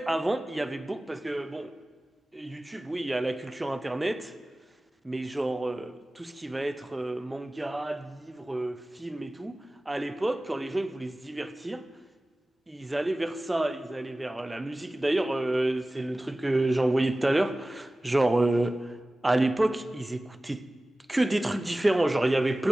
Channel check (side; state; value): both; normal; correlation 0.97